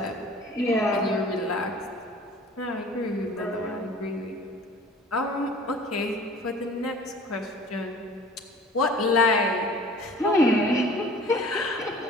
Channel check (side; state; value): both; normal; correlation 0.47